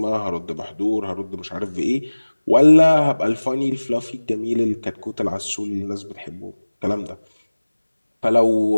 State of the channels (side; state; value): both; inverted; correlation -1.00